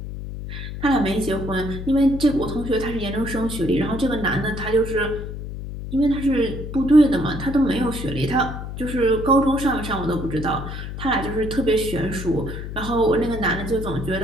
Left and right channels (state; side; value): noise; left; hum, 8 dB below the sound